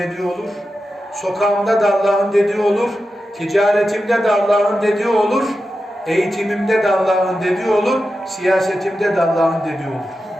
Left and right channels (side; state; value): both; normal; correlation 0.91